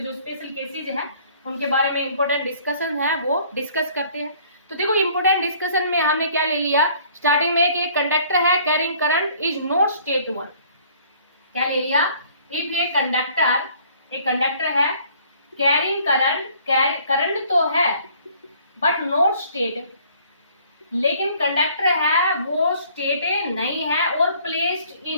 स्पेशल केसेज है उनके बारे में इंपोर्टेंट डिस्कशन है वो डिस्कस करते हैं। तो देखो इंपोर्टेंट डिस्कशन में हमने क्या ले लिया स्टार्टिंग में कि एक कंडक्टर है carrying current is not straight 1, क्या ले लिया, इफ ये कंडक्टर है कैरिंग करंट तो है बट नॉट स्टेट, लेकिन कंडक्टर है वो स्टेट नहीं है और placed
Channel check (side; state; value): both; inverted; correlation -0.57